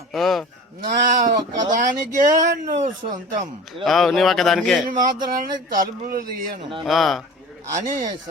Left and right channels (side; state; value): both; normal; correlation 0.39